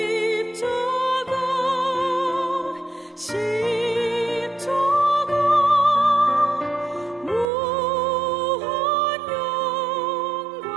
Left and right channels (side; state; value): left; drops out; at 7.5 s